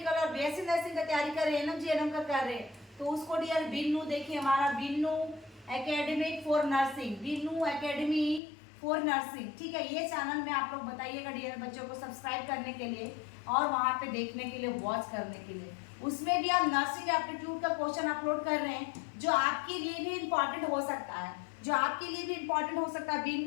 और BSc नर्सिंग का तैयारी कर रहे हैं, NM का कर रहे हैं, तो उसको डियर बिन्नू, देखिए हमारा Binnu academy for nursing, Binnu academy for nursing, ठीक है। ये चैनल में आप लोग बताइएगा डियर बच्चों को सब्सक्राइब करने के लिए और वहाँ पे देखने के लिए, वॉच करने के लिए। उसमें भी आप नर्सिंग एप्टीट्यूड का क्वेश्चन अपलोड कर रहे हैं, जो आपके लिए भी इम्पॉर्टेंट हो सकता है, जो आपके लिए भी इम्पॉर्टेंट हो सकता है,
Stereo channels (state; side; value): drops out; right; at 8.4 s